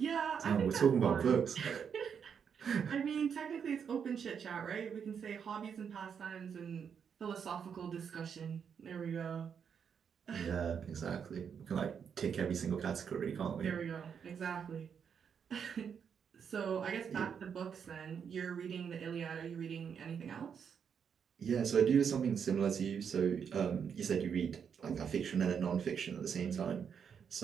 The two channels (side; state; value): left; quieter; 7.2 dB